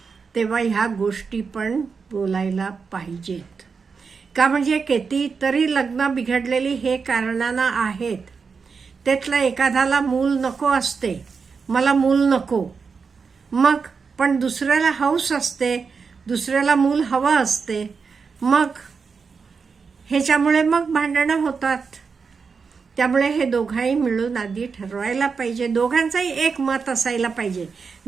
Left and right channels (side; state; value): left; quieter; 5.3 dB